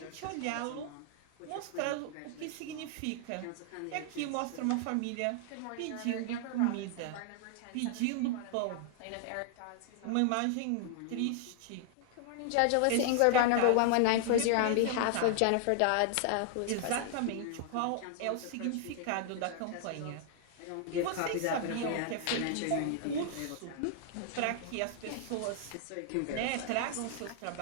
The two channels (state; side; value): different; both; correlation 0.00